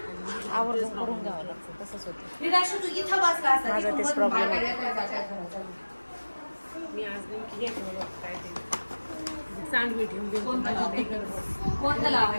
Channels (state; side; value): inverted; both; correlation -1.00